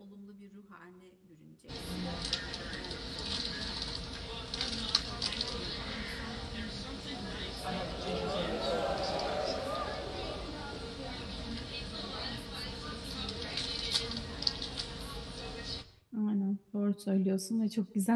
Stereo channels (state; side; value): identical; both; correlation 1.00